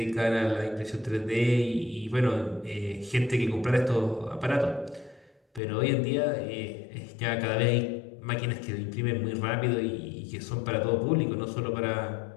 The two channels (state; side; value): drops out; right; at 5.6 s